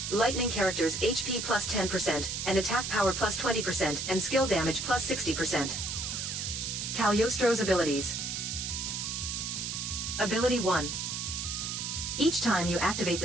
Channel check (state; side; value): noise; right; hiss, 3 dB below the sound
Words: Lightning characters HP plus 10% and attack power plus 20% and skill damage plus 60%. Cagliostro's abilities. Ability 1. Each time you activate